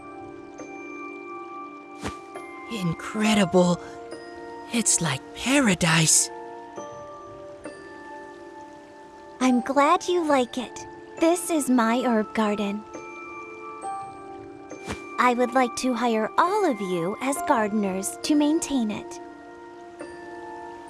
Incredible. It's like paradise. I'm glad you like it. This is my herb garden. I would like to hire all of you as gardeners to maintain it.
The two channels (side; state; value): both; identical; correlation 1.00